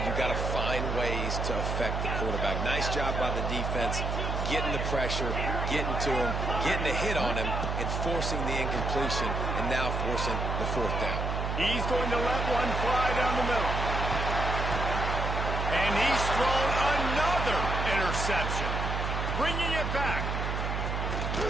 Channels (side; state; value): right; noise; hum, 1 dB below the sound